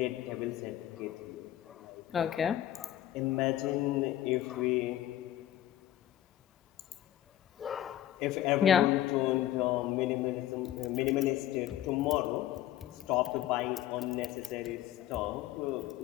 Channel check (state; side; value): quieter; right; 12.8 dB